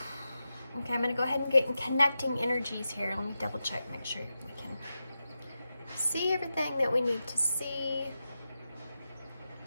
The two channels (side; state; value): both; inverted; correlation -0.90